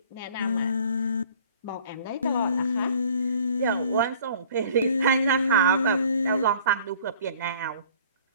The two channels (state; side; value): inverted; both; correlation -0.51